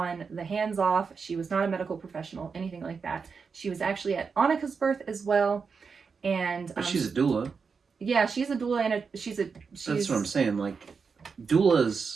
the hands off. She was not a medical professional, anything like that. She was actually at Annika's birth as well. And but she's a doula. Yeah, she's a doula, and she's That's what I'm saying. Like,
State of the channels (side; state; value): left; quieter; 5.4 dB